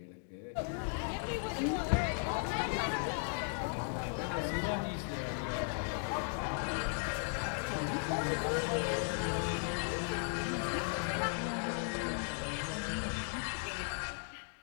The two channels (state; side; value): silent; right; 53 dB below the other